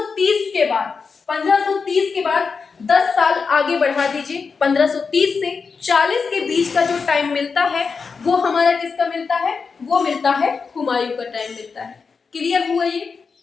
के बाद 10 साल आगे बढ़ा दीजिए, 1530 से 40 के बीच का जो टाइम मिलता है वो हमारा किसका मिलता है, वो मिलता है हुमायूं का टाइम मिलता है। क्लियर हुआ ये?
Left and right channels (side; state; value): right; quieter; 5.1 dB